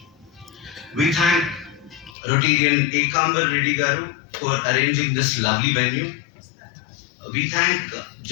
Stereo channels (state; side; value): drops out; right; at 2.1 s